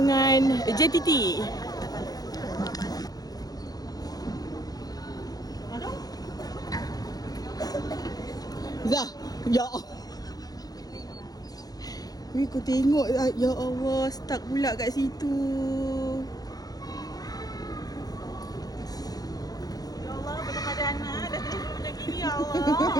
JTT. Zah, ya Allah. Wih, kau tengok. Ya Allah, stuck pula kat situ. Ya Allah, betul ada anak. Dah tadi duduk macam gini, ya Allah.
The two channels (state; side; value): late; right; 0.19 ms